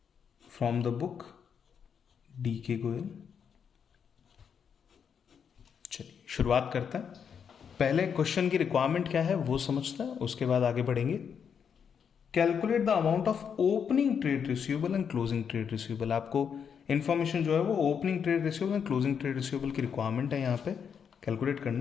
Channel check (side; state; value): right; quieter; 7.2 dB